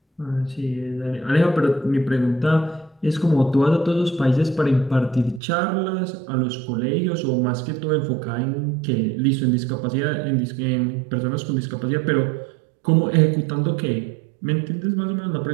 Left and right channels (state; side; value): drops out; left; at 5.4 s